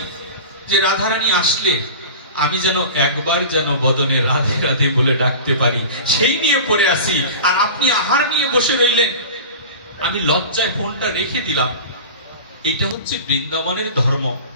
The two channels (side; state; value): both; inverted; correlation -0.34